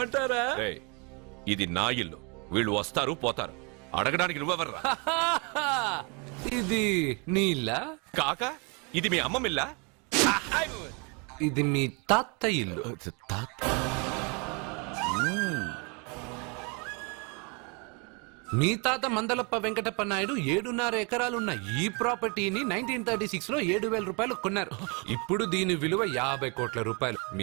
రేయ్, ఇది నా ఇల్లు. వీళ్ళు వస్తారు పోతారు. అడగడానికి నువ్వెవర్రా? ఇది నీళ్ళ కాక ఇది మీ అమ్మమ్మిల్లా? ఇది మీ తాత ఇల్లు. మీ తాత మందలప్ప వెంకటప్ప నాయుడు 7.5 ఎకరాలున్న ఈ ప్రాపర్టీని 1936 లో 7,000 రూపాయలు కొన్నారు. ఇప్పుడు దీని విలువ 50 కోట్ల రూపాయలు.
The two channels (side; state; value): left; quieter; 32.6 dB